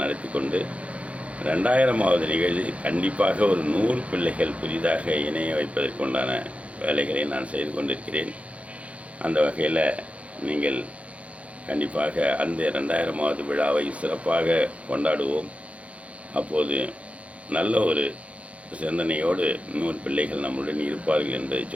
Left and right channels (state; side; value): late; left; 0.064 ms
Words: நடத்தி கொண்டு 2000வது நிகழ்ச்சி கண்டிப்பாக ஒரு 100 பிள்ளைகள் புதிதாக இணைய வைப்பதற்குண்டான வேலைகளை நான் செய்து கொண்டிருக்கிறேன். அந்த வகையில் நீங்கள் கண்டிப்பாக அந்த 2000வது விழாவை சிறப்பாக கொண்டாடுவோம். அப்போது நல்ல ஒரு சிந்தனையோடு 100 பிள்ளைகள் நம்முடன் இருப்பார்கள் என்பதை